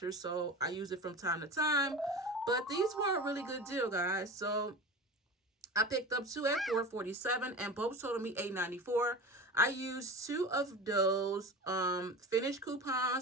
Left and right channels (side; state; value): both; normal; correlation 0.31